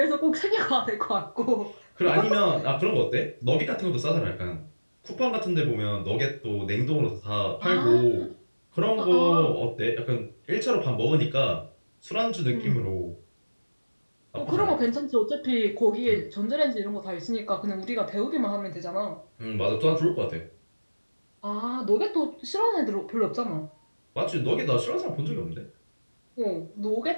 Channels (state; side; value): inverted; both; correlation -1.00